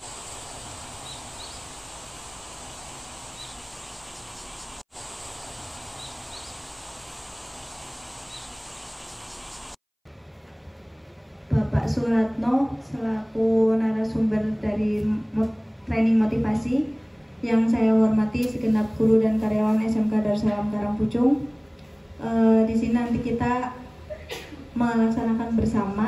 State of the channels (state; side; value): identical; both; correlation 1.00